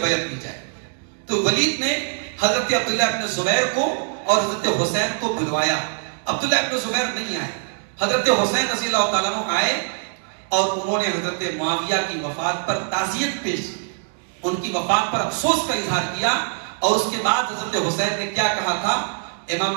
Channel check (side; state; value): left; silent; 58 dB below the other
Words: لی جائے. تو ولید نے حضرت عبداللہ ابن زبیر کو اور حضرت حسین کو بلوایا. عبداللہ ابن زبیر نہیں آئے، حضرت حسین رضی اللہ تعالیٰ عنہ آئے، اور انہوں نے حضرت معاویہ کی وفات پر تعزیت پیش کی، ان کی وفات پر افسوس کا اظہار کیا. اور اس کے بعد حضرت حسین نے کیا کہا تھا؟